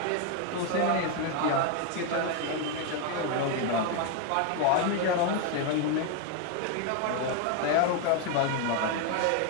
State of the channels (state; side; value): different; both; correlation 0.01